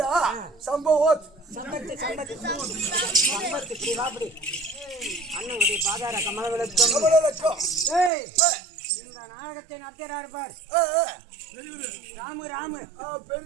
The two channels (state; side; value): drops out; left; at 8.1 s